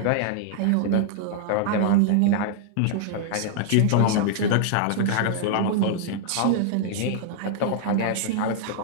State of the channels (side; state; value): both; different; correlation -0.01